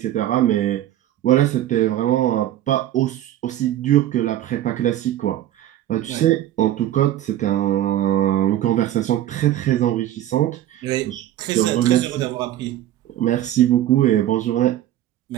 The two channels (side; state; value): left; quieter; 12.8 dB